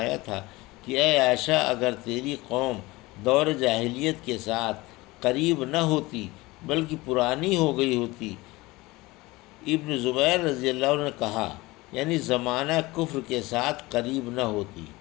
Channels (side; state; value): right; quieter; 21.2 dB